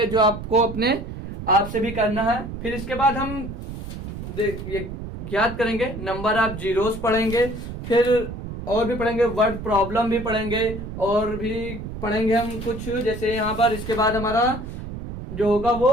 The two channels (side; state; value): right; noise; rumble, 9 dB below the sound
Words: जो आपको अपने आप से भी करना है। फिर इसके बाद हम ये याद करेंगे, नंबर ऑफ जीरोस पढ़ेंगे, फिर और भी पढ़ेंगे, वर्ड प्रॉब्लम भी पढ़ेंगे, और भी पढ़ेंगे हम कुछ जैसे यहाँ पर। इसके बाद हमारा जो होगा